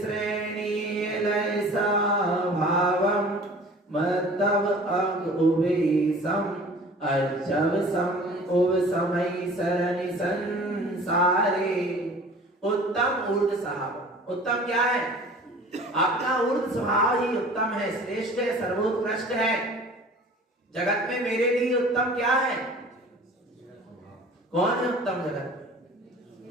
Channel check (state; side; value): normal; both; correlation 0.45